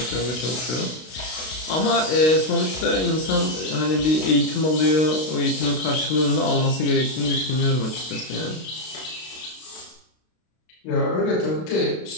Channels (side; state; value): right; late; 32 ms